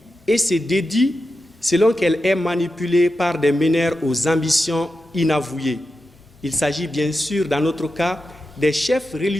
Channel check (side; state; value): both; normal; correlation 0.90